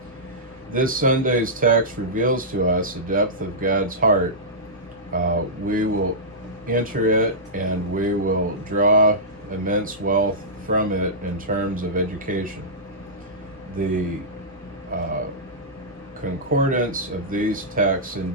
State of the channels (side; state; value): both; normal; correlation -0.15